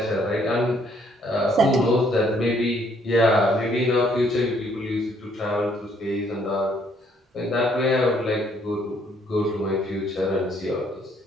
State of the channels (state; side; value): normal; both; correlation 0.66